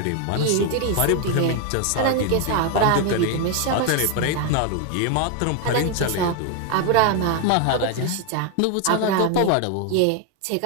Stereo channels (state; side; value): different; both; correlation 0.01